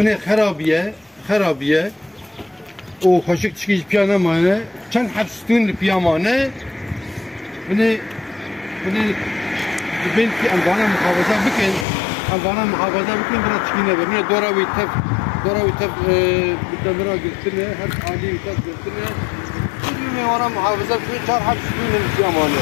خرابیه و خوشک چکیش پیانه مانه چند حبستون پیامانه بنی کی انوانه محافظه بکن برای چکینه بنی دوراوی تف بدمرا گرتنه هر عالی تف گرتنه بنی وانا محافظه بکن 4 حبستون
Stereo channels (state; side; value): drops out; right; at 11.9 s